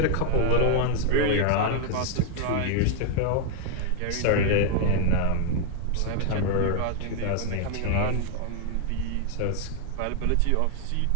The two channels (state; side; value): different; both; correlation 0.00